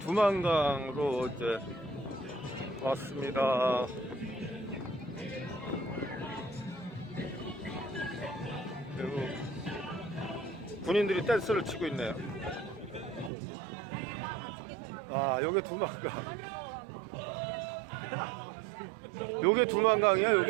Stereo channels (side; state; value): left; drops out; at 13.3 s